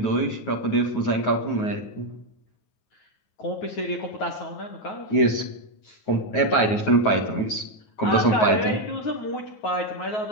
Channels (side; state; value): right; late; 9.4 ms